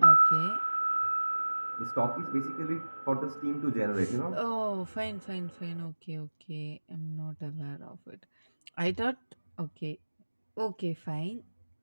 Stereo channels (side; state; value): both; inverted; correlation -1.00